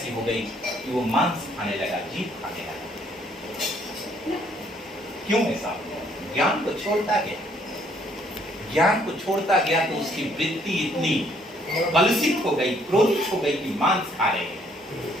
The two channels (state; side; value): normal; both; correlation 0.66